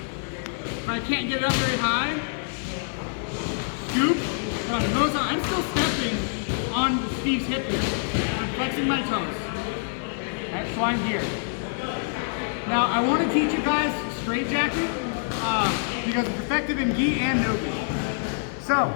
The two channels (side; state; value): right; silent; digital silence